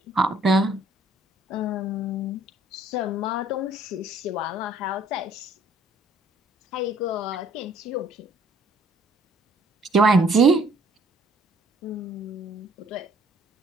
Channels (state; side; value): normal; both; correlation 0.60